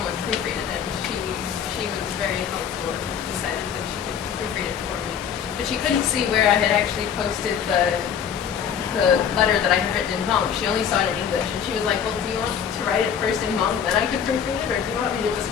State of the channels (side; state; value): right; quieter; 8.0 dB